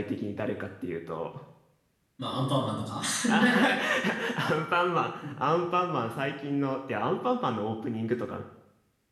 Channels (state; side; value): identical; both; correlation 1.00